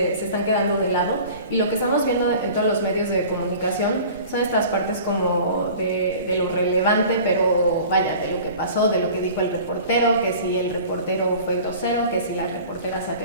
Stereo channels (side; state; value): both; inverted; correlation -0.43